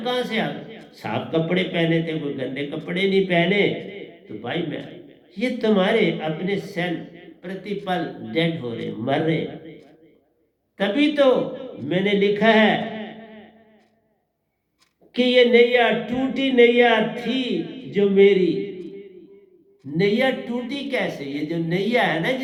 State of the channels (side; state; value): both; identical; correlation 1.00